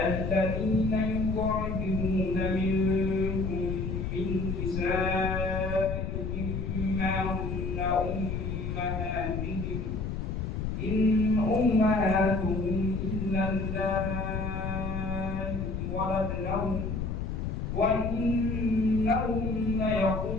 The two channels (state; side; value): noise; left; rumble, 3 dB below the sound